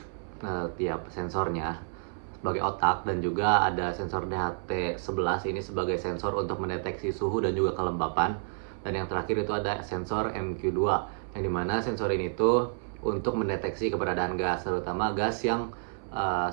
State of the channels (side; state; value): left; silent; 58 dB below the other